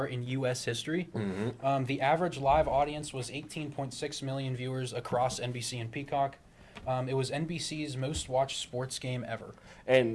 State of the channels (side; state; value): both; identical; correlation 1.00